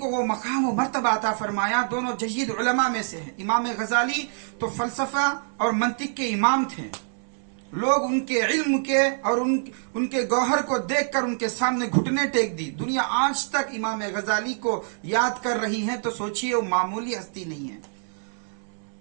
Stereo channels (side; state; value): left; silent; digital silence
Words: وہ مقام و مرتبہ عطا فرمایا، دونوں جید علماء میں سے ہیں۔ امام غزالی تو فلسفہ اور منطق کے امام تھے، لوگ ان کے علم کے اور ان کے گوہر کو دیکھ کر ان کے سامنے گھٹنے ٹیک دی۔ دنیا آج تک امام غزالی کو یاد کر رہی ہے، تو سوچئے وہ معمولی ہستی نہیں ہے۔